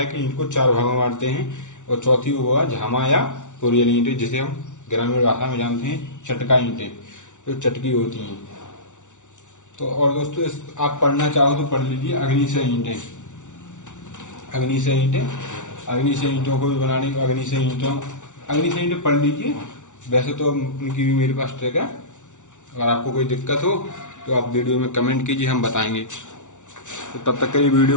कि ईंट को 4 भागों में बांटते हैं, और चौथी वो है झामा या कोरियल ईंटें, जिसे हम ग्रामीण भाषा में जानते हैं चटका ईंटें, जो चटकी होती हैं। तो और दोस्तों आप पढ़ना चाहो तो पढ़ लीजिए अग्निशय ईंटें, अग्निशय ईंटों को भी बनाने, अग्निशय ईंटें पढ़ लीजिए। वैसे तो उनकी भी मेरे पास ट्रिक है, अगर आपको कोई दिक्कत हो तो आप वीडियो में कमेंट कीजिए, हम बताएंगे। तो तब तक के लिए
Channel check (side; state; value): right; late; 0.86 ms